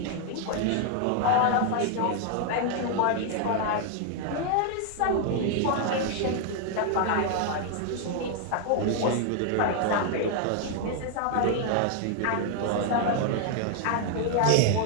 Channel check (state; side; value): different; both; correlation 0.00